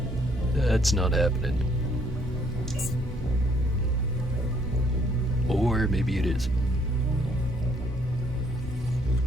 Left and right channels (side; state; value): both; normal; correlation 0.66